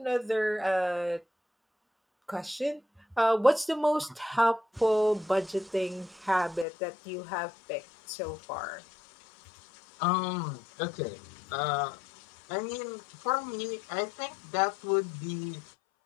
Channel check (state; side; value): drops out; right; at 6.7 s